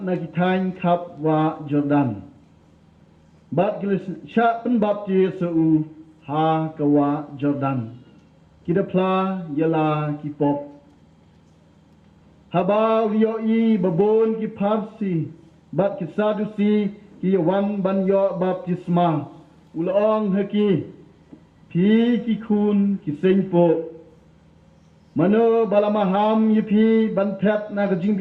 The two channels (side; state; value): both; identical; correlation 1.00